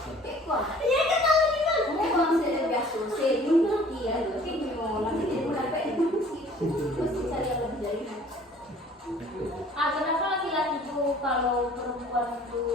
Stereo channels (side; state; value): both; normal; correlation 0.52